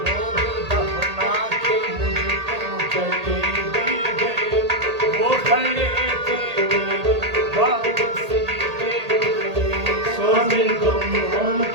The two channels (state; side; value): late; left; 1.8 ms